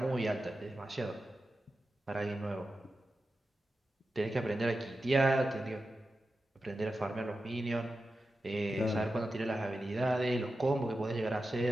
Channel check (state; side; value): normal; both; correlation 0.92